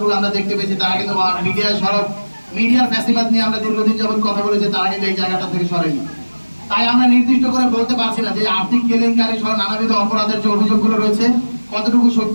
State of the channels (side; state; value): both; inverted; correlation -1.00